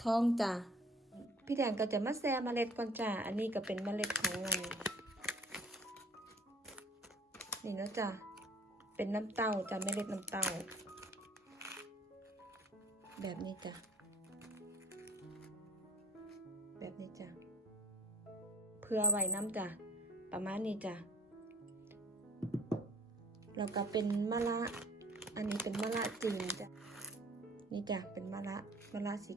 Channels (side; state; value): both; normal; correlation 0.54